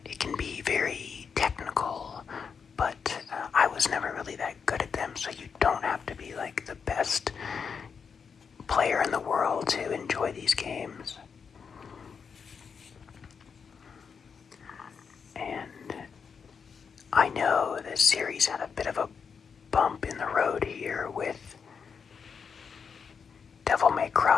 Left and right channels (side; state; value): right; quieter; 6.1 dB